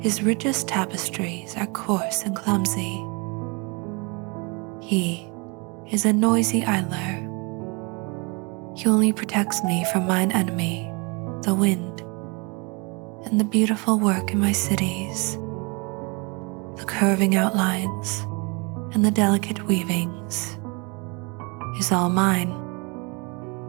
richest tapestries are coarse and clumsy. He is a noisy idler. He only protects me from mine enemy, the wind, and the beautiful work in my cities, the curving outlines and the delicate weavings, is all mine.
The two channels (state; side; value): quieter; left; 30.2 dB